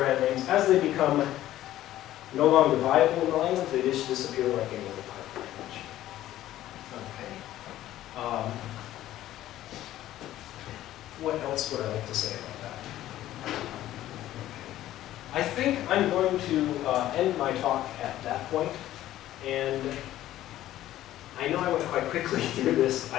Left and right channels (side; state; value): right; quieter; 13.8 dB